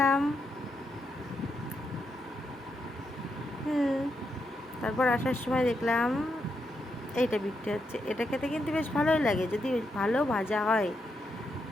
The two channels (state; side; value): normal; both; correlation 0.82